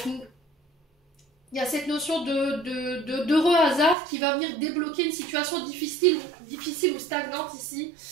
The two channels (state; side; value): drops out; left; at 4.0 s